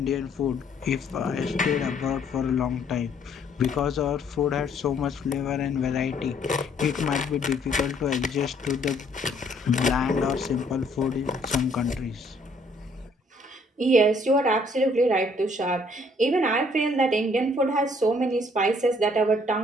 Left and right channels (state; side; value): normal; both; correlation 0.63